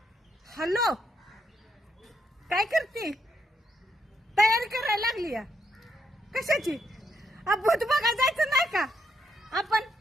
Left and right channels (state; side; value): normal; both; correlation 0.78